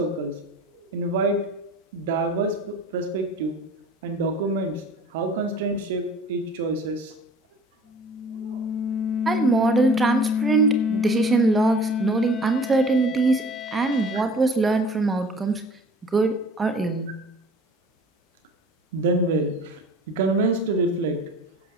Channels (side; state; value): both; normal; correlation 0.46